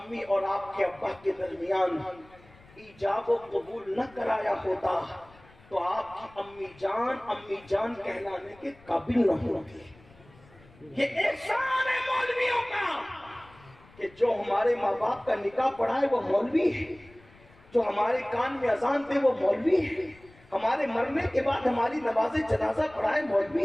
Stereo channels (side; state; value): left; noise; rumble, 26 dB below the sound